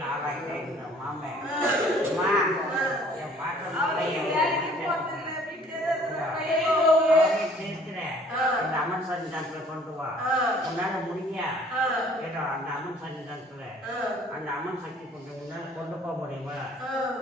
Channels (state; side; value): normal; both; correlation 0.55